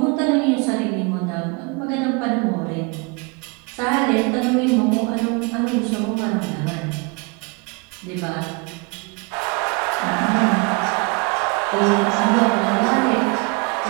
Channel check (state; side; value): quieter; left; 30.2 dB